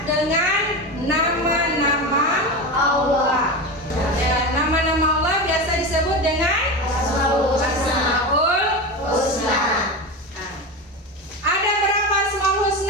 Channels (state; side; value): normal; both; correlation 0.22